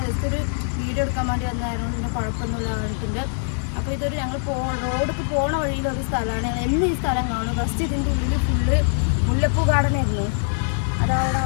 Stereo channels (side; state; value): right; silent; digital silence